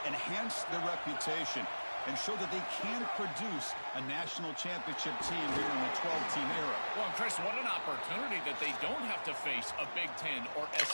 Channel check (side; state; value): both; inverted; correlation -1.00